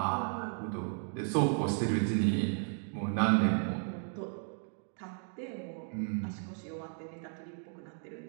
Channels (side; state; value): left; silent; 55 dB below the other